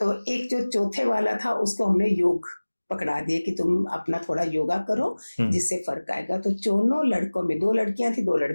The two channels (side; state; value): both; inverted; correlation -1.00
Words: एक जो चौथे वाला था उसको हमने योग पकड़ा दिए कि तुम अपना थोड़ा योगा करो जिससे फर्क आएगा। तो दोनों लड़कों में, 2 लड़कियां थी 2